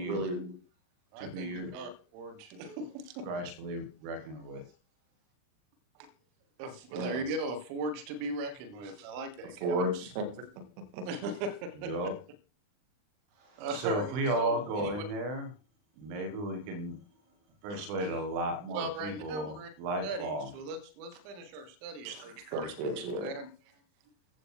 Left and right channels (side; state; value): left; late; 39 ms